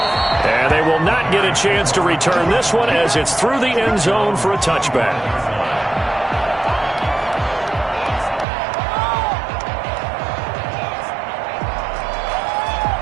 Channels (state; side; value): drops out; left; at 8.5 s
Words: And they will not get a chance to return this one as it's through the end zone for a touchback.